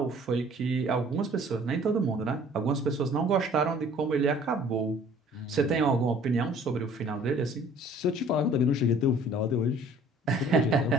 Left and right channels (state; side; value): normal; both; correlation 0.53